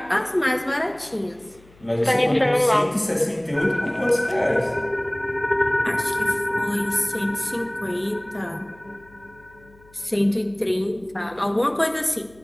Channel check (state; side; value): noise; left; hum, 27 dB below the sound